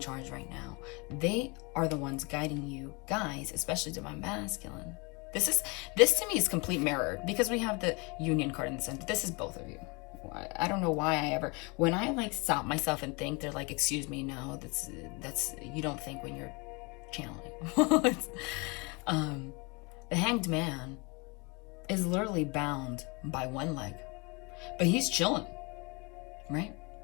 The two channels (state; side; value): quieter; right; 29.1 dB